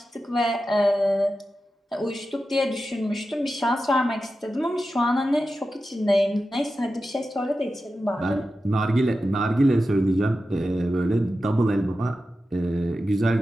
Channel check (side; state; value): both; normal; correlation 0.92